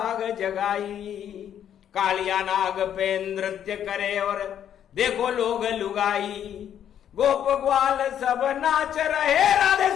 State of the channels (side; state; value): right; quieter; 9.7 dB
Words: जगाई। कालिया नाग पे नृत्य करे और देखो लोग लुगाई, गोप ग्वाल सब नाच रहे, राधे